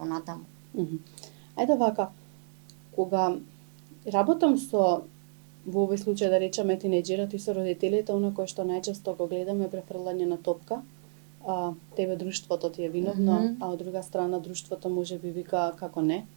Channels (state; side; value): silent; left; digital silence